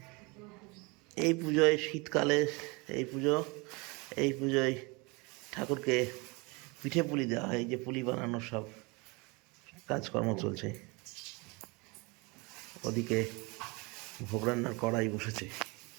এই পুজোয় শীতকালে এই পুজোয় ঠাকুরকে পিঠে পুলি দেওয়া হয়। এই যে পুলি বানানোর সব কাজকর্ম চলছে। ওদিকে ভোগ রান্নার কড়াই বসেছে।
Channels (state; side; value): quieter; left; 27.7 dB